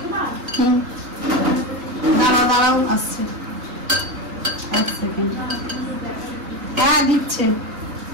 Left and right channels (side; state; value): left; late; 3.7 ms